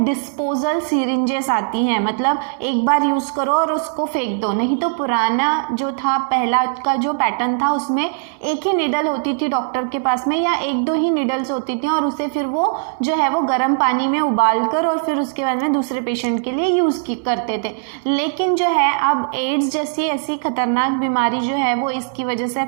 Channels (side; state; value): left; silent; 66 dB below the other